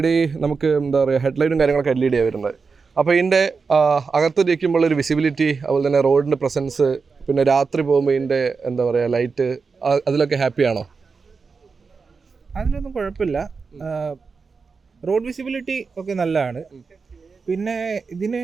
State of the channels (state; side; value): quieter; left; 4.9 dB